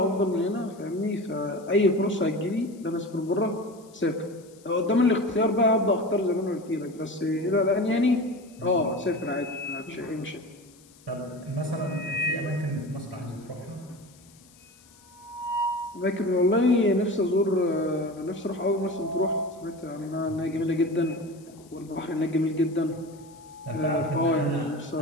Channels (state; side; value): noise; left; hiss, 27 dB below the sound